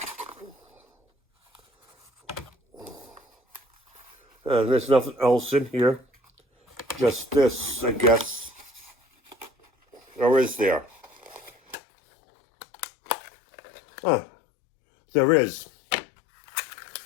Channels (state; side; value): drops out; right; at 11.8 s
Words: There's nothing else in here. Just this, I guess. Or is there? There is.